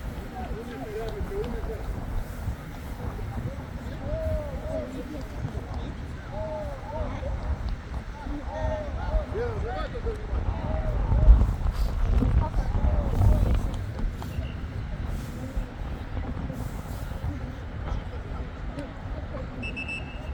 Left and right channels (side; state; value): both; identical; correlation 1.00